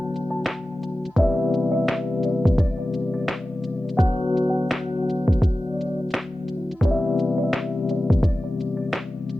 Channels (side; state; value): both; normal; correlation 0.95